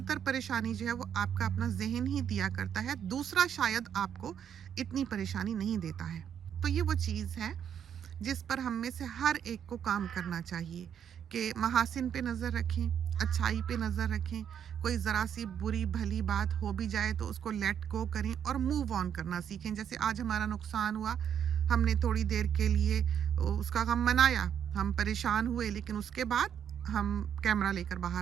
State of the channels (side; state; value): left; quieter; 8.7 dB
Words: परेशानी जो है वो आपका अपना जहन ही दिया करता है, दूसरा शायद आपको इतनी परेशानी नहीं देता है। तो ये वो चीज़ है जिस पर हम में से हर एक को काम करना चाहिए कि महासिन पे नज़र रखें, अच्छाई पे नज़र रखें। कोई ज़रा सी बुरी भली बात हो भी जाए तो उसको लेट गो करें और मूव ऑन करना सीखें। जैसे आज हमारा नुकसान हुआ, हमने थोड़ी देर के लिए उसका गम मनाया, हम परेशान हुए, लेकिन उसके बाद हम कैमरा लेकर